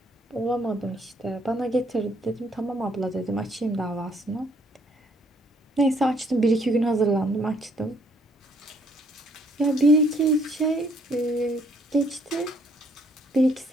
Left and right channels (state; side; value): normal; both; correlation 0.66